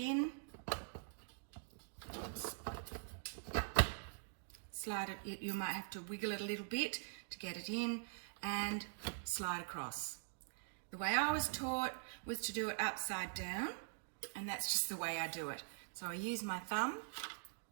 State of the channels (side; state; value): left; silent; digital silence